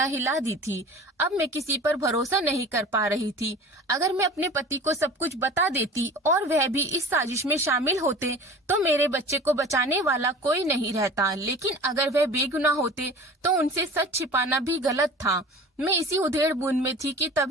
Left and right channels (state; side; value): normal; both; correlation 0.40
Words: हिला दी थी। अब मैं किसी पर भरोसा नहीं कर पा रही थी। अगर मैं अपने पति को सब कुछ बता देती और वह भी इस साजिश में शामिल होते तो मेरे बच्चे को बचाने वाला कोई नहीं रहता। लेकिन अगर वह बेगुनाह होते तो उनसे सच छिपाना भी गलत था। मैं इसी उधेड़ बूंद में थी कि